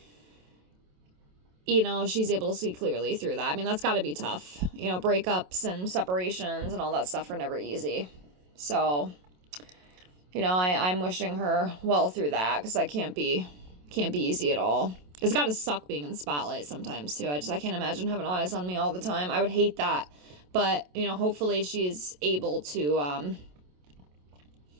you know, she's able to see clearly through that. I mean, that's got to be tough. You know, breakups and separations and all that stuff are never easy. So, you know, I'm wishing her well through that, because that can't be easy at all. It's got to suck being in the spotlight sometimes, too. I can't imagine having eyes on me all the time. I would hate that. But, you know, hopefully she's able to,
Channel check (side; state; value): left; late; 27 ms